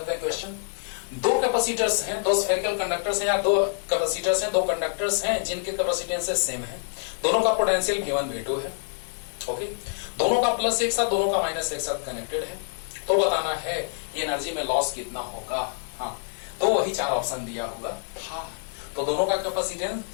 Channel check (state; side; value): silent; right; digital silence